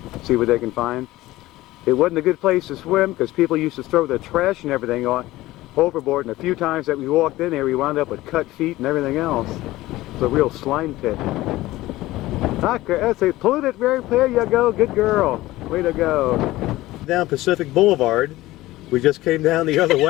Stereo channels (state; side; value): quieter; right; 17.4 dB